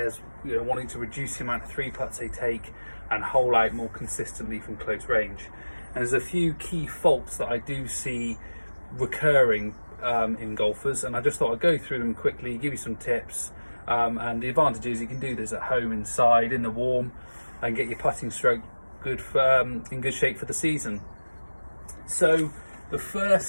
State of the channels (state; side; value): inverted; both; correlation -1.00